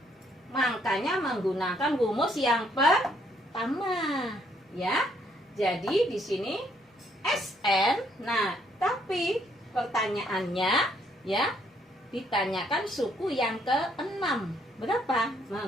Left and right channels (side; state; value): both; normal; correlation 0.69